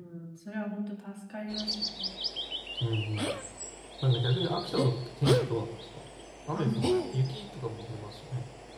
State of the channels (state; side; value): identical; both; correlation 1.00